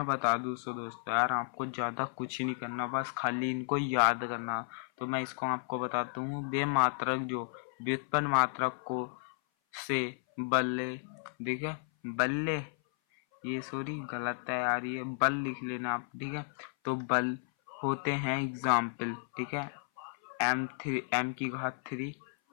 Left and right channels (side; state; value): right; silent; 56 dB below the other